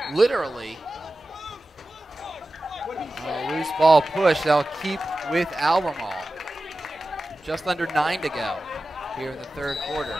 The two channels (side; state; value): both; normal; correlation 0.94